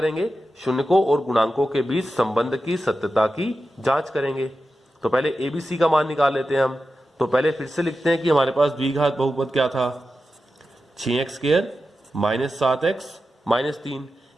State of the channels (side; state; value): both; normal; correlation 0.91